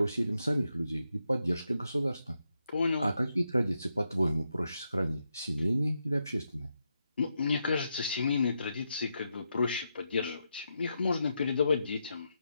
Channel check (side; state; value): both; inverted; correlation -0.84